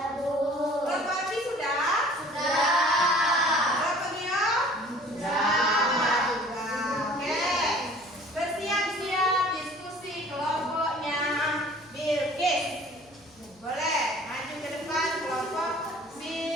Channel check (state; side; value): noise; left; hum, 29 dB below the sound